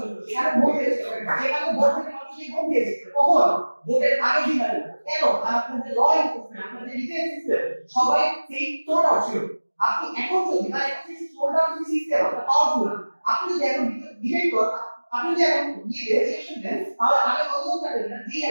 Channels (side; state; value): both; inverted; correlation -1.00